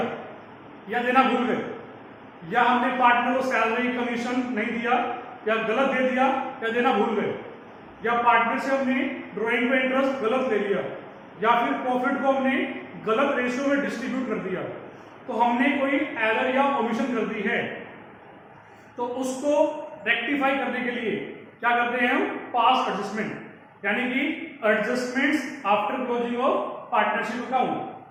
या देना भूल गए, या हमने पार्टनर को सैलरी कमीशन नहीं दिया या गलत दे दिया या देना भूल गए, या पार्टनर से हमने ड्राइंग पे इंटरेस्ट गलत दे दिया, या फिर प्रॉफिट को हमने गलत रेशियो में डिस्ट्रीब्यूट कर दिया। तो हमने कोई एरर या ओमिशन कर दी है, तो उसको रेक्टिफाई करने के लिए क्या करते हैं हम? पास्ट एडजस्टमेंट, यानी कि adjustments after closing of partnership account.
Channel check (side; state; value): both; identical; correlation 1.00